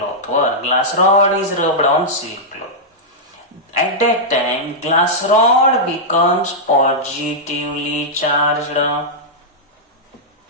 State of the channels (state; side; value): normal; both; correlation -0.08